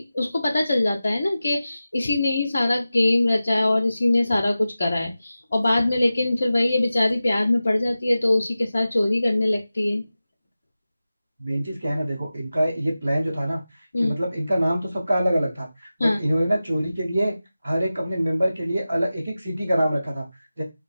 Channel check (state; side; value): inverted; both; correlation -0.95